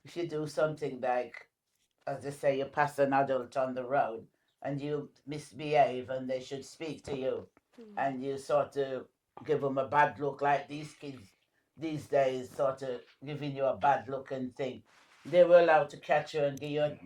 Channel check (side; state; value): both; identical; correlation 1.00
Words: if you do something like, as they say, you pass an adult on the road and you misbehave and they should speak to you, and you sort of give them a bad look, like these kids these days sort of giving you a bad look and thing. They were allowed to catch you and give you a